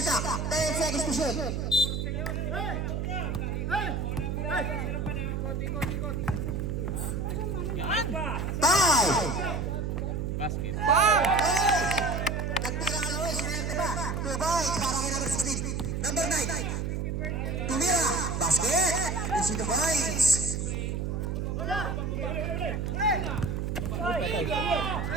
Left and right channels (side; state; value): right; noise; hum, 1 dB below the sound